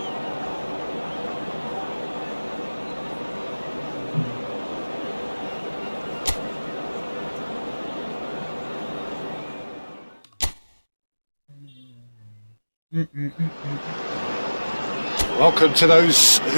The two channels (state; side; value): inverted; both; correlation -1.00